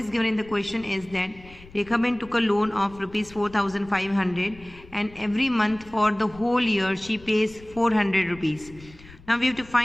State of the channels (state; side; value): noise; left; rumble, 21 dB below the sound